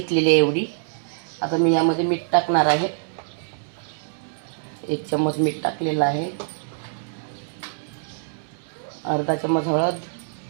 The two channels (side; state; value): left; silent; 62 dB below the other